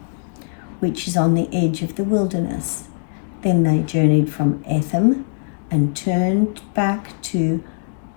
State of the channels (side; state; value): right; silent; digital silence